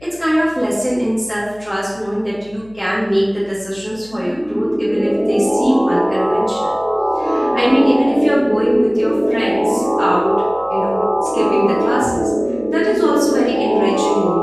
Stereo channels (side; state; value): left; noise; hum, 26 dB below the sound